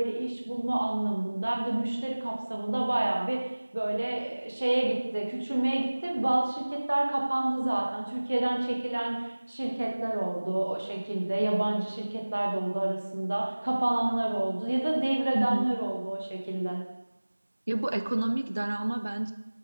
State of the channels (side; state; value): both; inverted; correlation -1.00